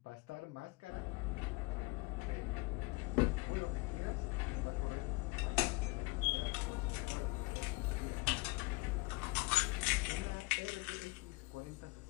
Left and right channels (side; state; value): right; quieter; 25.5 dB